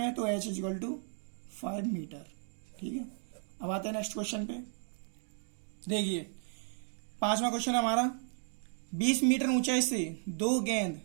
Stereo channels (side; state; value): left; silent; 55 dB below the other